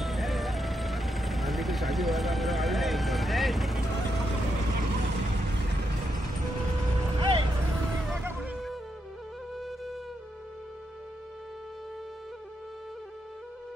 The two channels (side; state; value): both; normal; correlation 0.82